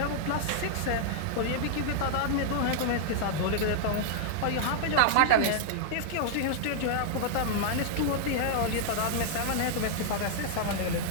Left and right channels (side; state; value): both; different; correlation -0.01